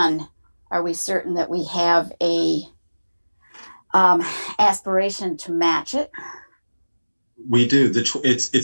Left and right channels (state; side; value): inverted; both; correlation -1.00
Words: are we certain that we have a aspiration to match it? We do.